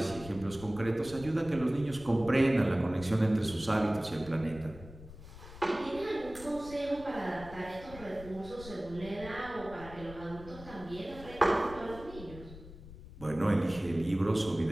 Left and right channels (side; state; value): left; noise; rumble, 16 dB below the sound